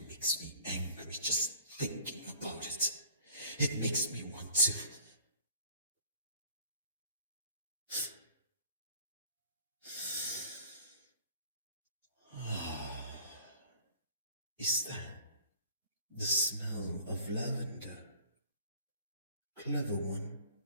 makes me angry just thinking about it. It makes me want to... Is that the smell of lavender? Clever one,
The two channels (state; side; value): inverted; both; correlation -0.51